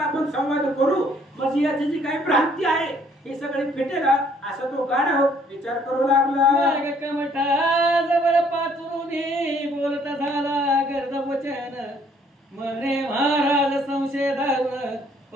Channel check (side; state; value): both; normal; correlation 0.63